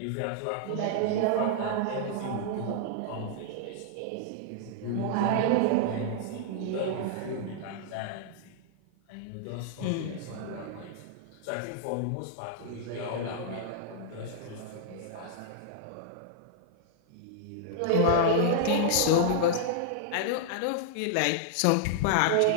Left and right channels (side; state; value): both; different; correlation -0.01